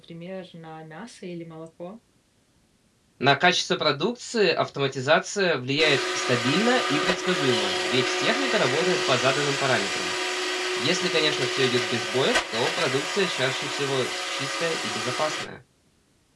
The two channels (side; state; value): both; identical; correlation 1.00